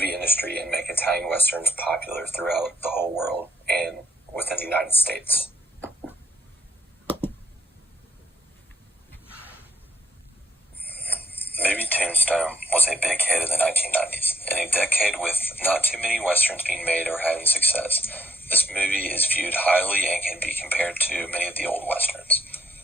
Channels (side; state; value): both; normal; correlation 0.69